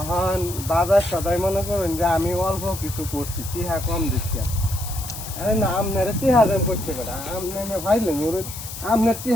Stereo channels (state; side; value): noise; left; hiss, 10 dB below the sound